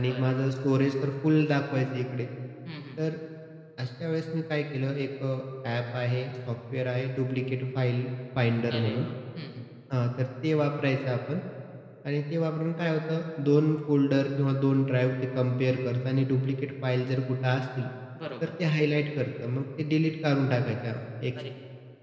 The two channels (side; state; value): both; identical; correlation 1.00